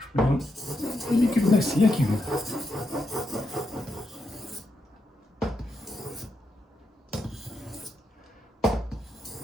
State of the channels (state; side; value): normal; both; correlation 0.83